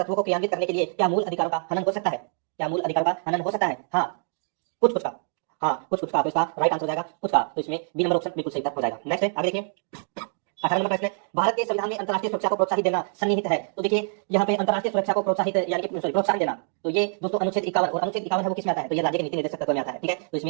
को क्रियान्वित करने के लिए क्या मूल अधिकारों का हनन हो सकता है? क्या मूल अधिकारों का हनन हो सकता है? हाँ, कुछ कुछ का। हाँ, कुछ कुछ का। तो इसका राइट आंसर हो जाएगा कुछ का। तो इसमें बी नंबर ऑप्शन बिल्कुल सही उत्तर हो जाएगा। नेक्स्ट है, आगे देखिए, 18 नंबर प्रश्न है, भारत के संविधान में अंतर्राष्ट्रीय सुरक्षा को प्रोत्साहित देना सन्निहित है। तो देखिए, यहाँ पे अंतर्राष्ट्रीय सुरक्षा को प्रोत्साहित यानी कि प्रोत्साहन देना, तो ये दोस्तों अनुच्छेद 51 और अनुच्छेद 51 है वो किस में आता है? तो ये राज्य के नीति निर्देशक तत्व में आता है। ठीक है, तो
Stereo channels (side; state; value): left; silent; digital silence